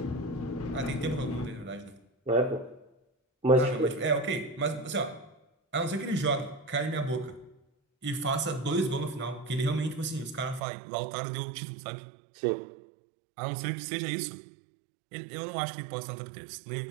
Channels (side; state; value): left; drops out; at 10.6 s